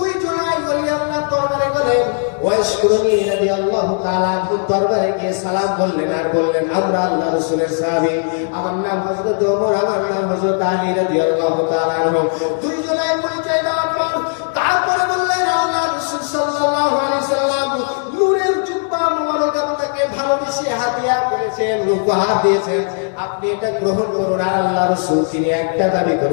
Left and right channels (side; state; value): right; silent; 57 dB below the other